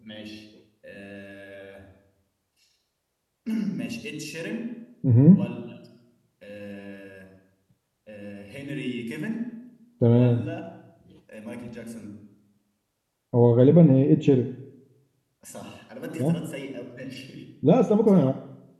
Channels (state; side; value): identical; both; correlation 1.00